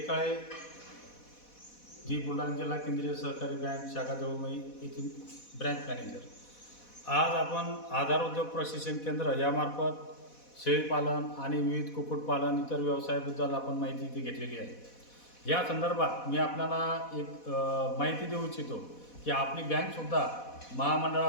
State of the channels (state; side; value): late; right; 4.1 ms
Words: जी बुलढाणा जिल्हा केंद्रीय सहकारी बँक शाखा जवळमई येथील ब्रँच मॅनेजर. आज आपण आधार उद्योग प्रशिक्षण केंद्र यामार्फत शेळीपालन आणि विविध कुक्कुटपालन इतर व्यवसायाबद्दल आपण माहिती इथे घेतलेली आहे. या संदर्भात मी आपल्याला एक माहिती देऊ इच्छितो की आपली बँकसुद्धा